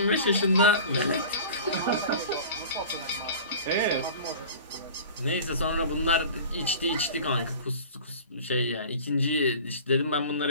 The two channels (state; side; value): inverted; both; correlation -0.39